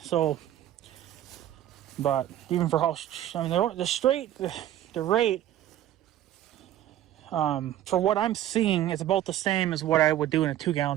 So, but even for how, I mean, the rate. For what I'm seeing, it's about the same as what I would do in a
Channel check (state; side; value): quieter; left; 12.4 dB